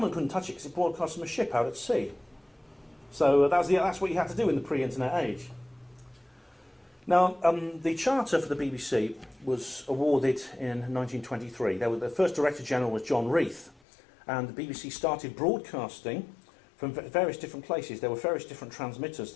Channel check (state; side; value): drops out; right; at 13.8 s